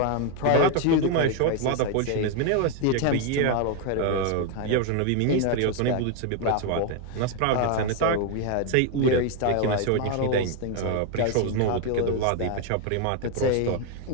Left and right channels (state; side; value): different; both; correlation 0.01